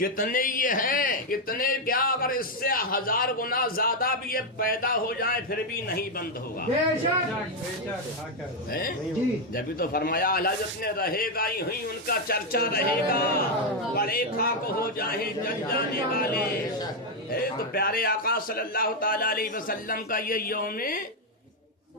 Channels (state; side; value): normal; both; correlation 0.03